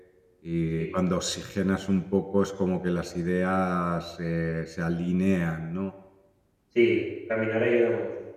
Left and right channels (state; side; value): identical; both; correlation 1.00